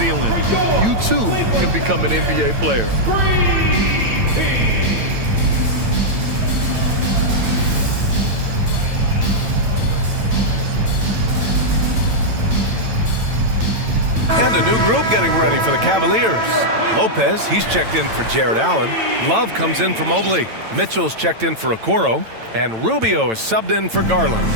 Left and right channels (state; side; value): late; left; 9.0 ms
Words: You too can become an NBA player. And a new group getting ready for the Cavaliers. Lopez, he's checked in for Jared Allen. Love comes in for Mobley. Mitchell's checked in for Okoro. And Rubio is subbed in for Garland.